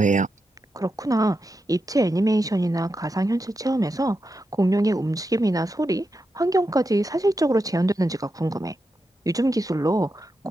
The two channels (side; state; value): both; normal; correlation 0.87